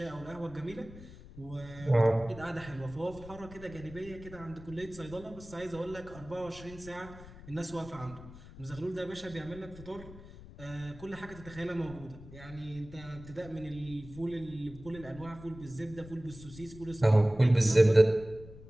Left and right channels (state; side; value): noise; left; rumble, 16 dB below the sound